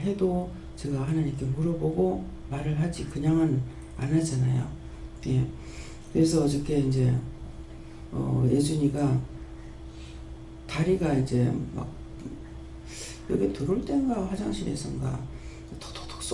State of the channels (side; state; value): both; identical; correlation 1.00